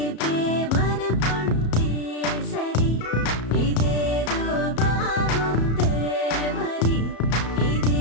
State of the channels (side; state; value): right; late; 34 ms